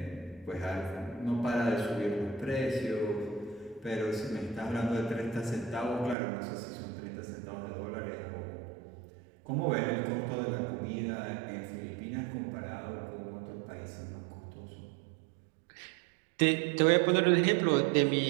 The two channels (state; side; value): drops out; left; at 6.2 s